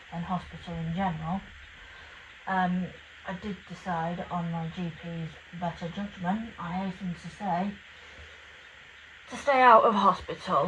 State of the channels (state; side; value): identical; both; correlation 1.00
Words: and hospital in general, I did decide, on my GP's better judgment, I hasten to say, to stay out of